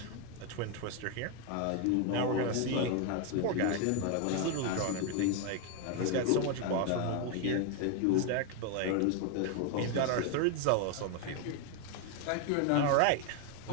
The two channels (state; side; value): different; both; correlation 0.01